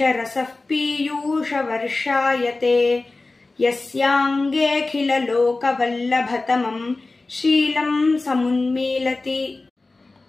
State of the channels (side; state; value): right; quieter; 3.4 dB